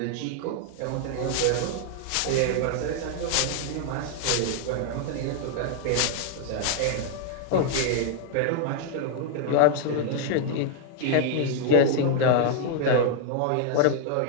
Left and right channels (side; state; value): both; different; correlation 0.00